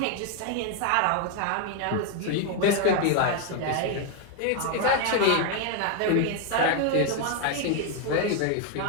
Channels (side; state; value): both; different; correlation 0.01